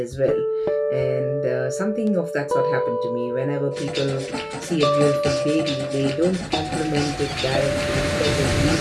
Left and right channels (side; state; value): both; identical; correlation 1.00